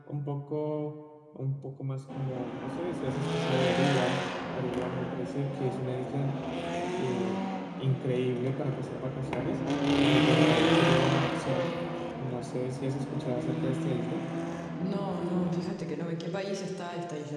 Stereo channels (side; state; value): both; identical; correlation 1.00